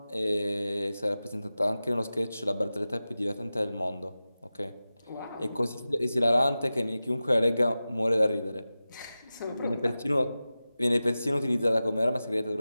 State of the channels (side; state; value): both; inverted; correlation -0.95